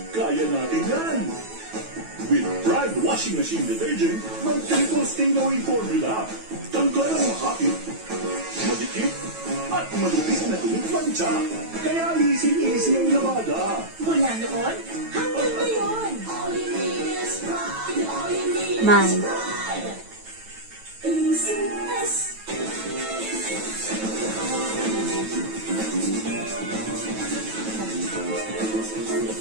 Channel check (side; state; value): left; late; 9.2 ms